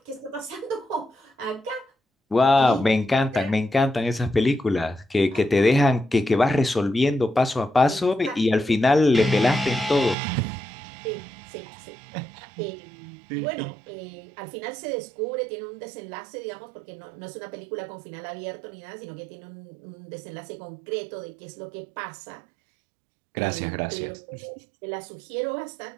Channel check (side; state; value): left; drops out; at 10.2 s